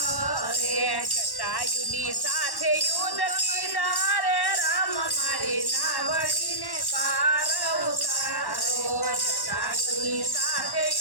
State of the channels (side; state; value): right; late; 1.1 ms